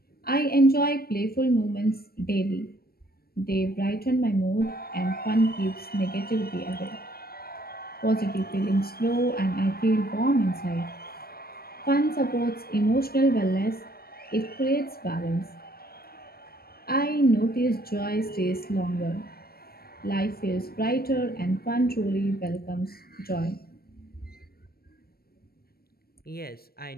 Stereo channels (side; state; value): right; late; 0.44 ms